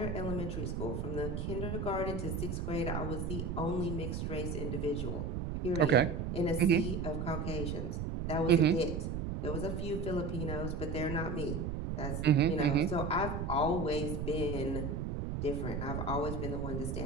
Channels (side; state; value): right; noise; rumble, 3 dB below the sound